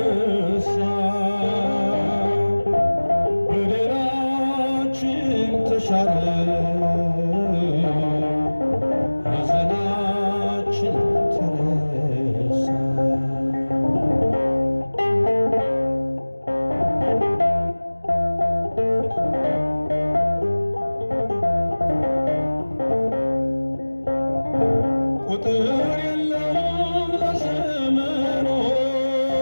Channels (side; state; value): both; inverted; correlation -1.00